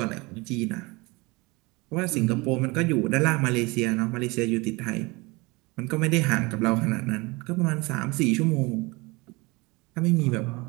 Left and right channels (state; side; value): quieter; left; 25.0 dB